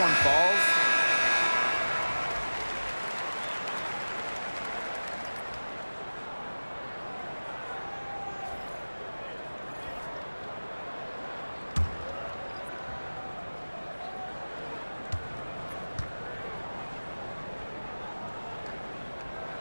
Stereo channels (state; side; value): inverted; both; correlation -1.00